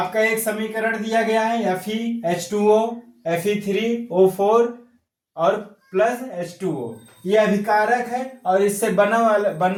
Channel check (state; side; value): identical; both; correlation 1.00